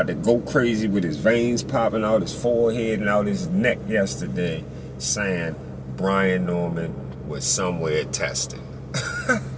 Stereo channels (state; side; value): identical; both; correlation 1.00